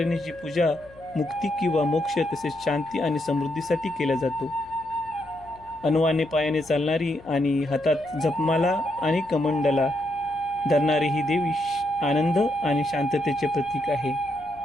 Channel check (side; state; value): left; noise; hum, 24 dB below the sound